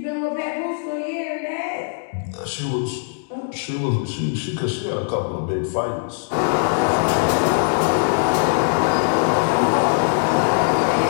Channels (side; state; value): right; silent; digital silence